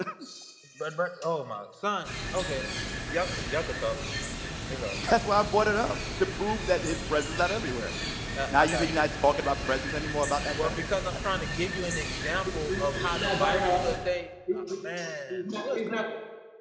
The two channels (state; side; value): identical; both; correlation 1.00